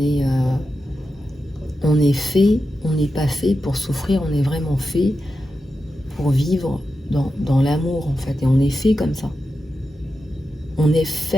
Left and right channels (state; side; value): normal; both; correlation 0.90